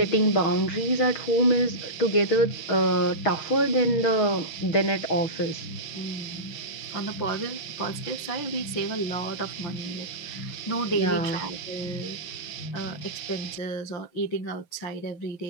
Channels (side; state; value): right; late; 5.9 ms